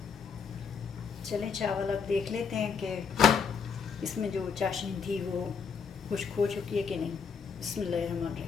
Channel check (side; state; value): right; quieter; 6.1 dB